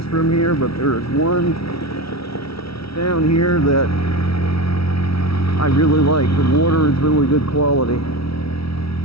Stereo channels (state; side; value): late; right; 0.76 ms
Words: from here, but there's one down here that I really like. The water is really good quality.